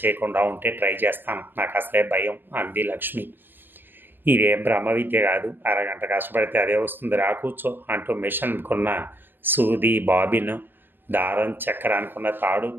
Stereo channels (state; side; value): late; left; 0.097 ms